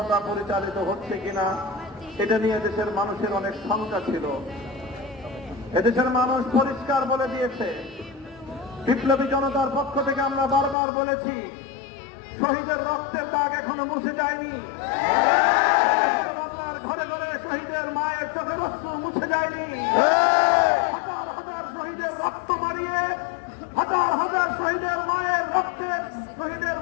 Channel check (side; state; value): right; drops out; at 10.8 s